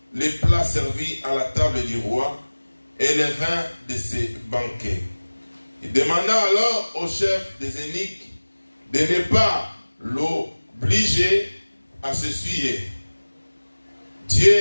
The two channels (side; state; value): both; inverted; correlation -1.00